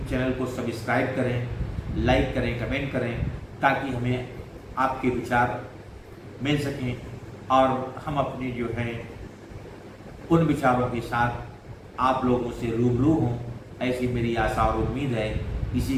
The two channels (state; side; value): identical; both; correlation 1.00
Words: चैनल को सब्सक्राइब करें, लाइक करें, कमेंट करें, ताकि हमें आपके विचार मिल सकें और हम अपने जो है उन विचारों के साथ आप लोगों से रूबरू हों, ऐसी मेरी आशा और उम्मीद है। इसी